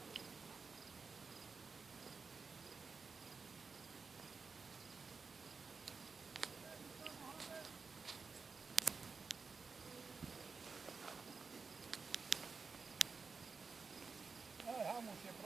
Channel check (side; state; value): left; quieter; 4.9 dB